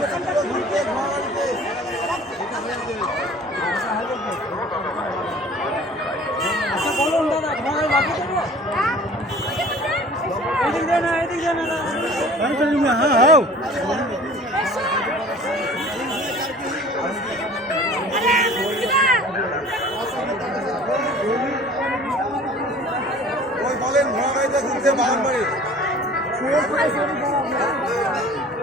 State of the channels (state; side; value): normal; both; correlation 0.46